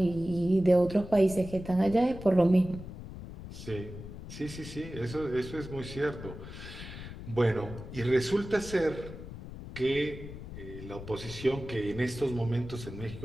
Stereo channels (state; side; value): noise; left; rumble, 12 dB below the sound